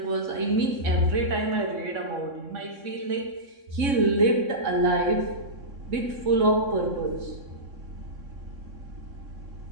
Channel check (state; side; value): late; left; 3.6 ms